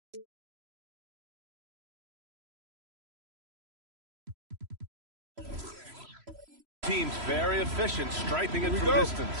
teams very efficient, striping it from distance.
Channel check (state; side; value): late; left; 3.0 ms